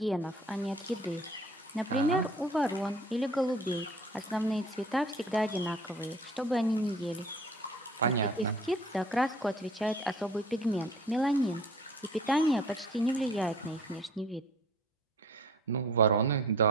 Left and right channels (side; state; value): both; normal; correlation 0.49